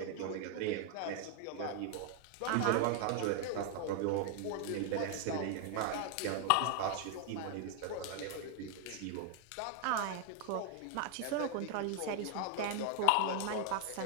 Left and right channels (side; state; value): both; different; correlation 0.00